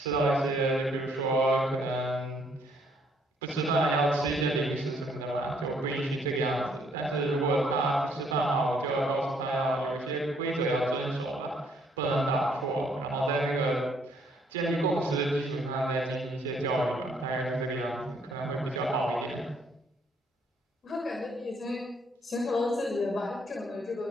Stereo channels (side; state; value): both; normal; correlation 0.67